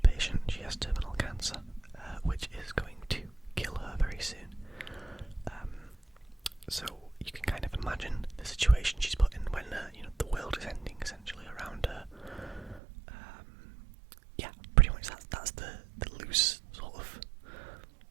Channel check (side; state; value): left; drops out; at 12.8 s